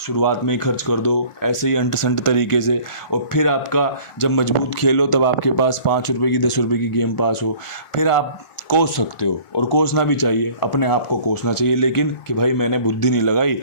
में ही खर्च कर दो ऐसे ही अंट संट तरीके से, और फिर आपका जब मजबूत खेलो तब आपके पास 5 रुपये की 10 रुपये की गेम पास हो, फिर आप कोस सकते हो। और कोसना भी चाहिए, अपने आप को कोसना चाहिए, लेकिन कि भाई मैंने बुद्धि नहीं लगाई,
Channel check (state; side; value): late; right; 1.4 ms